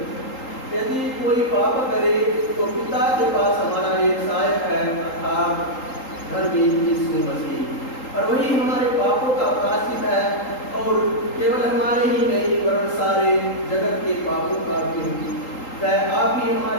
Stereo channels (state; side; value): late; right; 3.8 ms